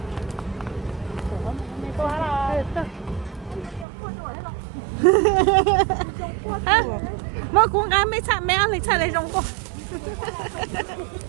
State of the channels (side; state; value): left; drops out; at 3.9 s